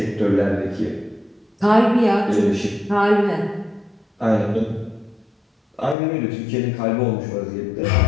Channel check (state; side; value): drops out; right; at 6.0 s